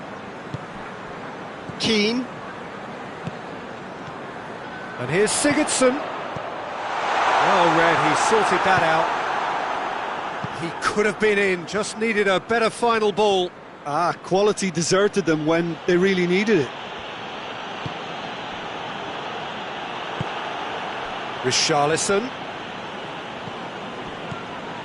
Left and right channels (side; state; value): both; identical; correlation 1.00